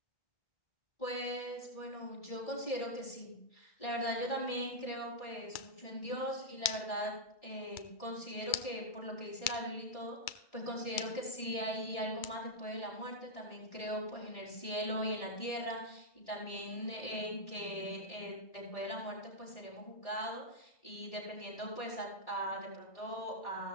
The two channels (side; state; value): right; late; 2.3 ms